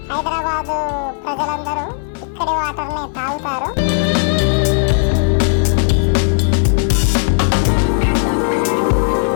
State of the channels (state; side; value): silent; right; digital silence